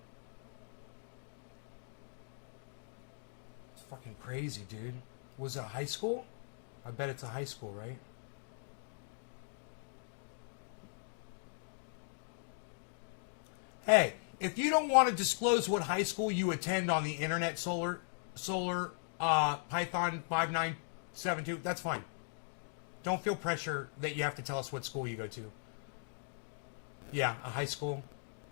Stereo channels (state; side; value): silent; right; digital silence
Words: Fucking crazy, dude. Was it a high school? I bet it's a high school, right? Hey, if you don't want to disclose what high school you attend on the internet, Solar Python 5972, that's fine. Don't feel pressure that you have to tell us what school you go to. Yeah, a high school.